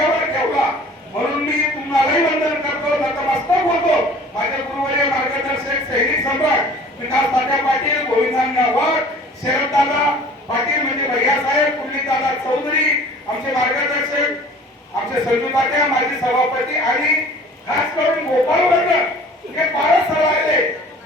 ठेवला, म्हणून मी तुम्हालाही वंदन करतो, नतमस्तक होतो. माझे गुरुवर्य मार्गदर्शक सैनिक सम्राट विकास तात्या पाटील, गोविंदांना वाघ, शरददादा पाटील म्हणजे भैयासाहेब, कुर्लीदादा चौधरी, आमचे मार्गदर्शक, आमचे संजू तात्या, माजी सभापती आणि खास करून गोपाल वर्ग हे फारच सरायले.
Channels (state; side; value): normal; both; correlation 0.47